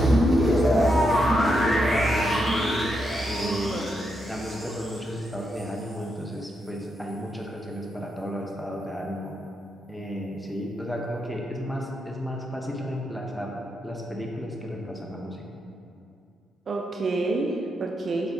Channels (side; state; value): both; normal; correlation 0.82